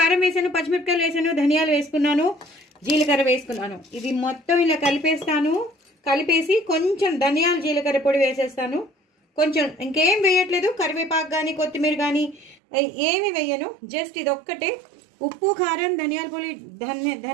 వేశాను, పచ్చిమిరపకాయలు వేశాను, ధనియాలు వేసుకున్నాను, జీలకర్ర వేసుకున్నాను. ఇది మొత్తం ఇలా కలిపేస్తాను. కలిపేసి కొంచెం ధనియాలు జీలకర్ర పొడి వేసేస్తాను. కొంచెం ఇంకేం వేయట్లేదు, కరివేపాకు కానీ కొత్తిమీర కానీ ఏమి వేయను. జస్ట్ ఇది ఒక్కటే ఉప్పు, కారం,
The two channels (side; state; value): left; drops out; at 12.6 s